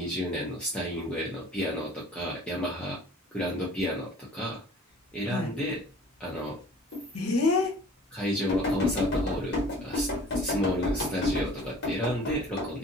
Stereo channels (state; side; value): normal; both; correlation 0.48